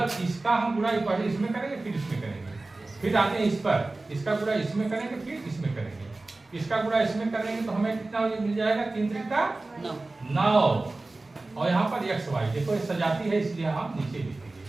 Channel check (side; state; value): left; quieter; 3.1 dB